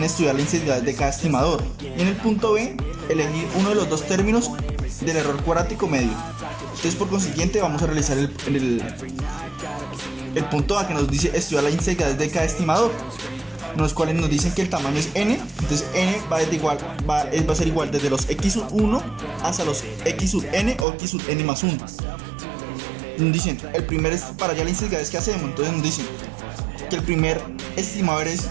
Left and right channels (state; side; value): drops out; left; at 20.9 s